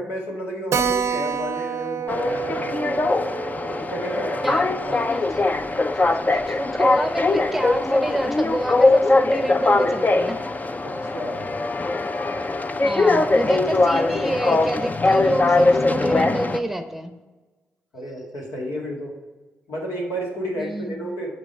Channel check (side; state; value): both; normal; correlation 0.87